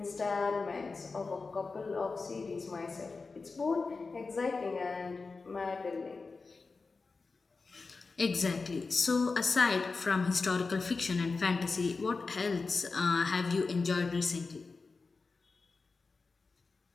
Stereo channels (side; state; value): right; quieter; 4.2 dB